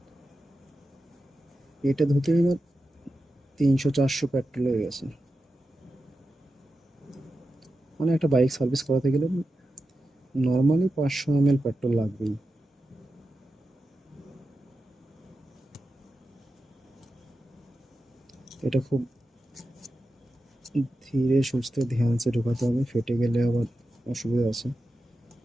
এটা ধুতে এবার 300-400 পেট্রোল হয়ে গেছে। মানে একটা বাইক সার্ভিস করাতে গেলে নর্মালি 500 ml পেট্রোল লাগবেই। এটা খুব ধীরে সুস্থে ধ্যানসে ঢোকাতে হবে, ফেটে গেলে আবার অসুবিধা আছে,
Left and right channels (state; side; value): normal; both; correlation 0.91